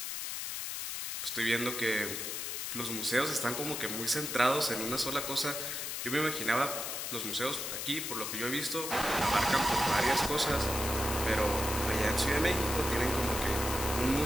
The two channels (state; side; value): noise; left; hiss, 4 dB below the sound